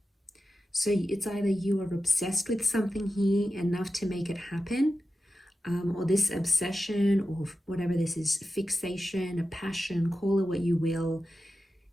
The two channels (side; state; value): both; normal; correlation 0.92